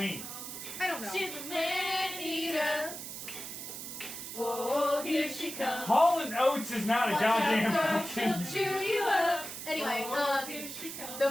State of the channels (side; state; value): right; noise; hiss, 8 dB below the sound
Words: I don't know. She's a man eater. Oh, here she comes. Hall and Oates is not a goddamn She'll fucking. chew you up. Anyway, Here she comes. the